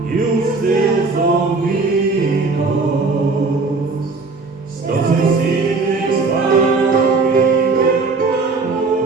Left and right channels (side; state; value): left; quieter; 4.0 dB